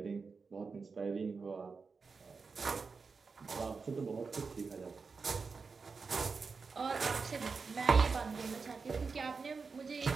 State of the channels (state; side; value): quieter; left; 4.8 dB